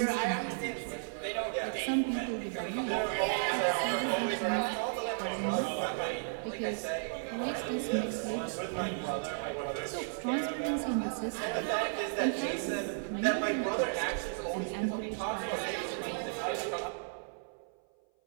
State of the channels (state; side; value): silent; left; 55 dB below the other